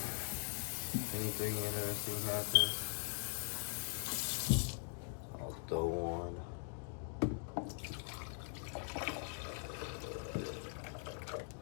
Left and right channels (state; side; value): silent; right; 50 dB below the other